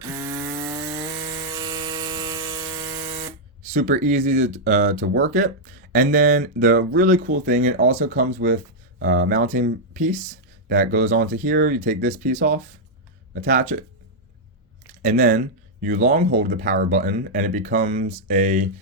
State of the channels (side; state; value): both; normal; correlation -0.05